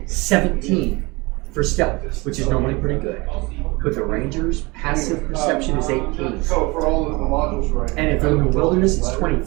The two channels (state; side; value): quieter; left; 25.0 dB